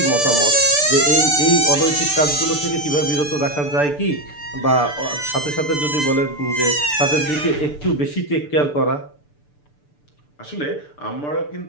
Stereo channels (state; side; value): late; right; 6.8 ms